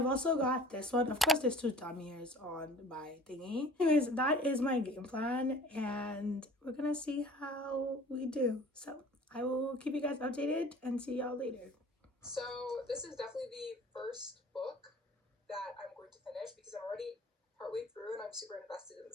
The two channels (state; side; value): normal; both; correlation 0.47